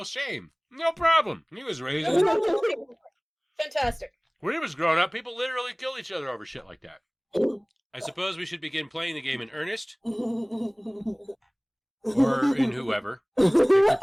shame. No problem. He was raised Fantastic. When he was growing up, people literally kill each other over shit like that. I suppose we should begin playing the game in earnest. Or in whoever. Is this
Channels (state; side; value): identical; both; correlation 1.00